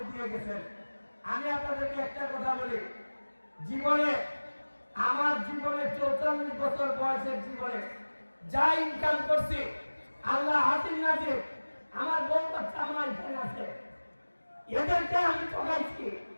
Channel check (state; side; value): inverted; both; correlation -1.00